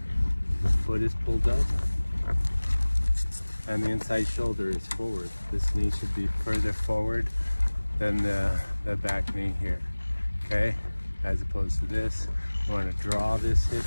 the foot is pulled up, and the inside shoulder is forward. This knee should be further forward than the back knee here, okay? As opposed to this, you want to draw this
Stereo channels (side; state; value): both; inverted; correlation -1.00